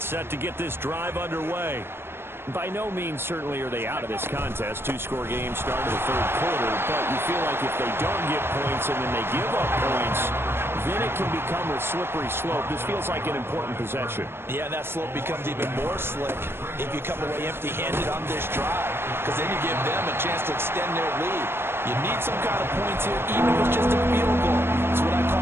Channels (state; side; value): late; left; 0.11 ms